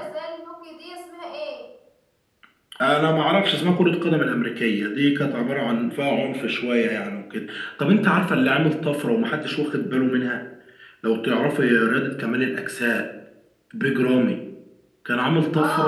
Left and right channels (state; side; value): identical; both; correlation 1.00